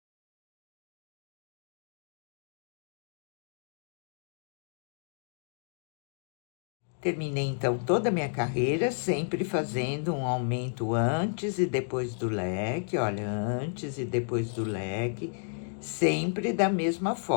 Terminei, então, toda a minha carreira, sempre fazendo um aumento antes e depois do leque, olha, antes e depois do leque, sempre da mesma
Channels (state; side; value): silent; right; digital silence